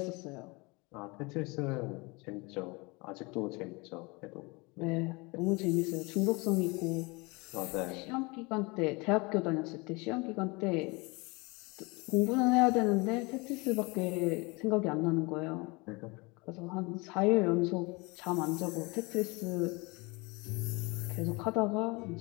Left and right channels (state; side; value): quieter; right; 26.7 dB